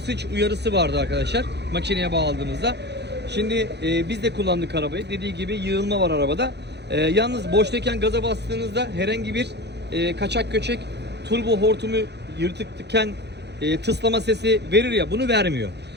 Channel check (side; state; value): left; late; 0.49 ms